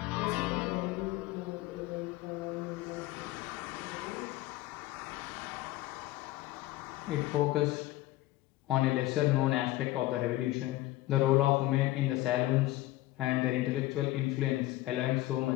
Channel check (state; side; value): quieter; right; 17.0 dB